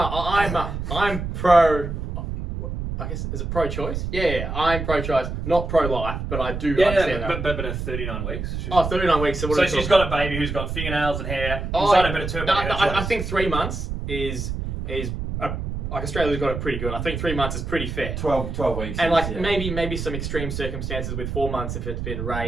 I'm pro. I guess is it pro-choice? Yeah, I'm pro-choice, not pro-life, but I do understand that. but at 39 weeks. 39 weeks. So what So are we she's talking- got a baby who's got fingernails and hair. Oh, Inside her, but it's her no, body, her I choice. think 3 months is like Australia's got it pretty good. I think 3 months is pretty fair. 12 weeks. And like yeah. maybe some extreme circumstances with 4 months if it's been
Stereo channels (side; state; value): right; noise; rumble, 5 dB below the sound